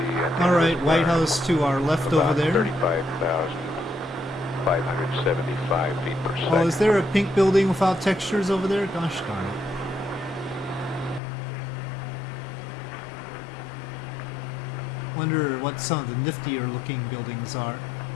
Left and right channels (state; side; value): drops out; right; at 11.2 s